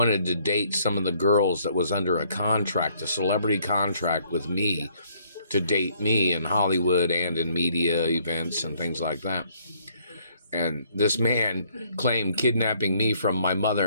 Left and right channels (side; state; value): both; inverted; correlation -0.65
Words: to date some of the girls that was under a contract, a celebrity contract with me, to date me in Hollywood and in media events and things like that. And this man claimed kidnapping me from my